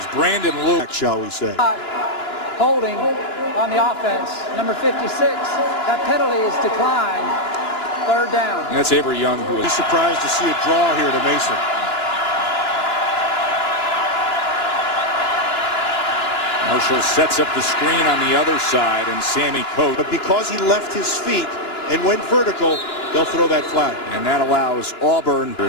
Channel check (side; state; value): right; late; 2.9 ms